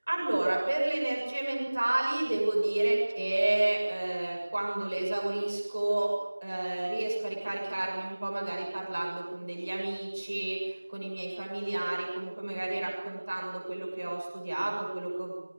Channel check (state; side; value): inverted; both; correlation -1.00